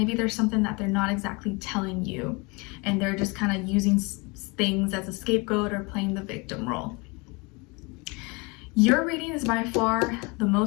there's something that they're not exactly telling you, and they're just kind of using things as a scapegoat or playing the victim role. Your reading is by far the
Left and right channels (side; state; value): right; quieter; 28.2 dB